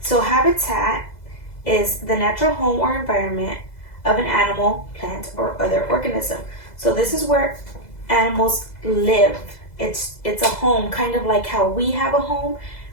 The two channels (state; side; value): late; right; 2.0 ms